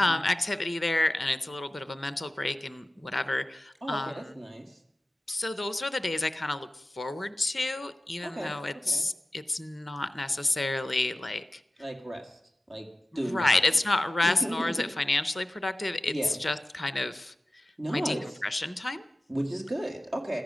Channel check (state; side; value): normal; both; correlation 0.97